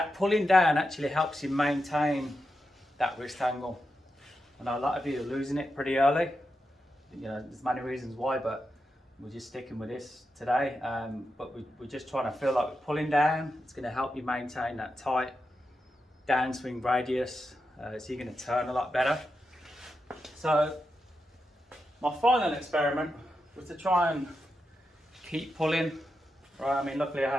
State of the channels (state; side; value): normal; both; correlation 0.88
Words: pulling down actually helps you maintain that wrist angle. I know a lot of you are losing it pretty early. You know, there's many reasons why, but we're just sticking with this today. But we're just trying to feel like we're pulling down. It's going to help you maintain that tight downswing radius, so you're going to turn a lot better. So my final experiment was to try and keep pulling. Right, I mean, luckily I